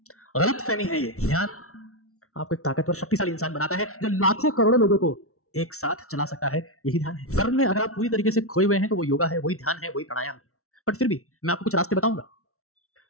गलत फहमी है ये। ध्यान आपको एक ताकतवर शक्तिशाली इंसान बनाता है जो लाखों करोड़ों लोगों को एक साथ चला सकता है। यही ध्यान है। कर्म में अगर आप पूरी तरीके से खोए हुए हैं तो वो योगा है, वही ध्यान है, वही प्राणायाम है। बट फिर भी मैं आपको कुछ रास्ते बताऊंगा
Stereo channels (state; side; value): late; right; 0.63 ms